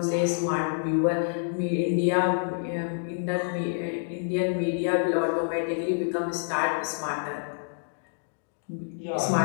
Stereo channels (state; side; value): silent; right; digital silence